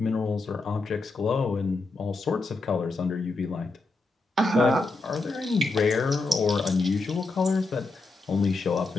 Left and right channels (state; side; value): quieter; right; 3.4 dB